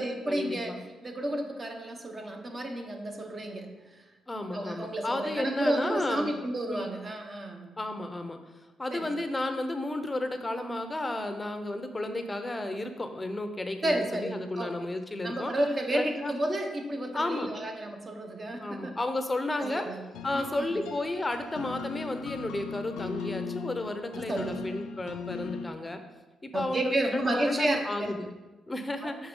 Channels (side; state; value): both; normal; correlation 0.88